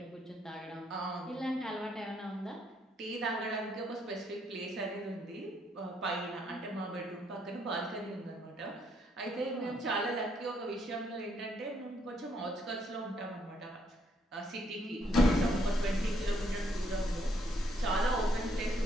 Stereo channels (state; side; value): normal; both; correlation 0.72